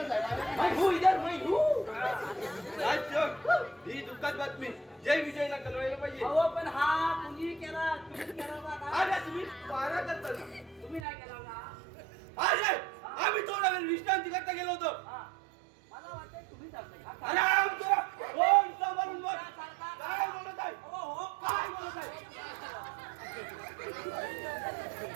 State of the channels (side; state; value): left; drops out; at 11.1 s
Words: मैं हूँ इधर, मैं हूँ. राजचोर, ही दुःखद बातमी जय विजयला कळवायला पाहिजे. अहो पण हा तुम्ही केला का? अरे तुम्ही पारा करता ना. तुम्ही नाही केला का? अरे आम्ही थोडा वेळ विश्रांती करता गेलो होतो. हा. मला वाटतं तुम्ही चालताय का? आराम करा. कोण सांभाळून बोल. काय बोलत आहे? हो काय बोलत आहे?